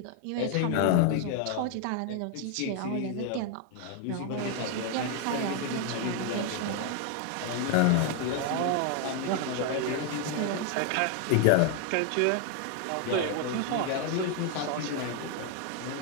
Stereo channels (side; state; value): both; different; correlation 0.00